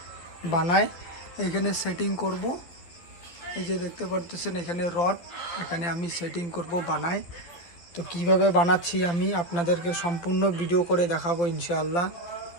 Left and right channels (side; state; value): right; late; 12 ms